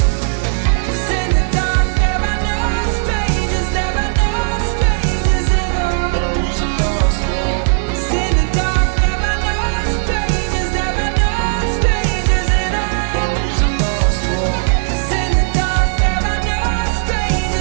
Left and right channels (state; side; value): silent; left; digital silence